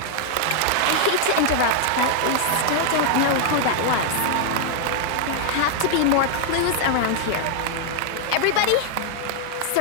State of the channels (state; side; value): different; both; correlation 0.00